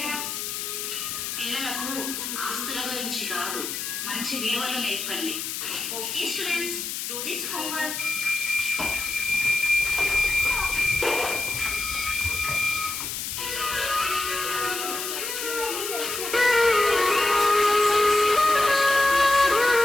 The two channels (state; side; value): noise; left; hiss, 5 dB below the sound